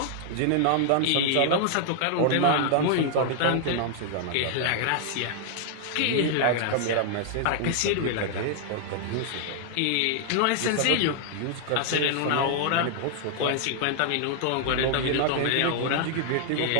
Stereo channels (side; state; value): both; different; correlation 0.00